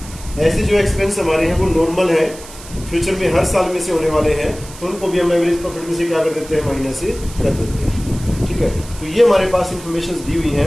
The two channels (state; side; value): noise; right; hiss, 17 dB below the sound